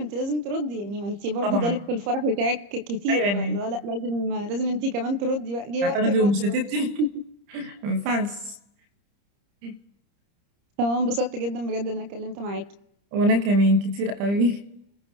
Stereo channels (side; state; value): left; late; 30 ms